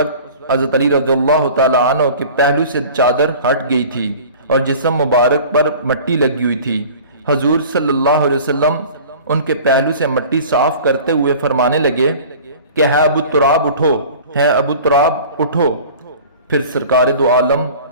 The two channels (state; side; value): inverted; both; correlation -0.43